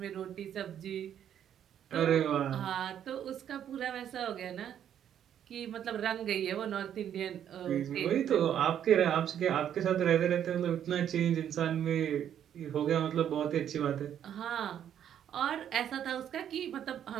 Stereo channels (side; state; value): left; quieter; 9.7 dB